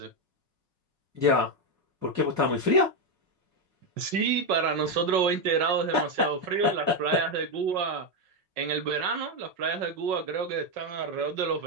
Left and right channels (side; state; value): left; late; 5.4 ms